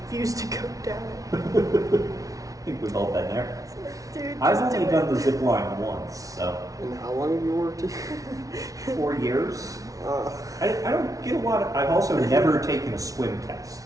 refused to go down it. I think we've all been there. Dude, I've just only do done it. the zip line once, so And how long have you worked here? 4 years. Uh, I don't get a lot of. I've also never taken a swim test.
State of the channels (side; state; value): left; late; 0.17 ms